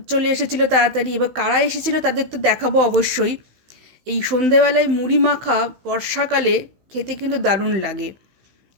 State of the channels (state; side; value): late; left; 16 ms